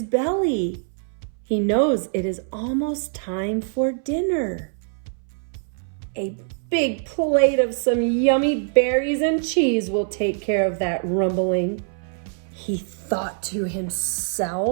belly. He knows it is almost time for dinner. A big plate of some yummy berries and cheese will take care of that rumbling, he thought to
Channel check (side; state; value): left; silent; 62 dB below the other